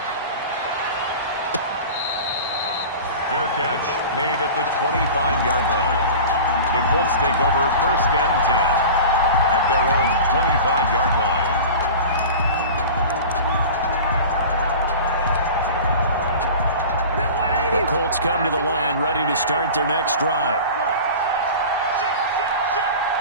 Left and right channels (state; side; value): inverted; both; correlation -0.35